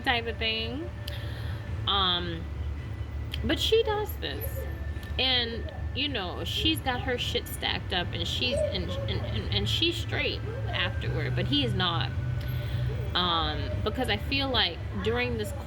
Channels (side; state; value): both; identical; correlation 1.00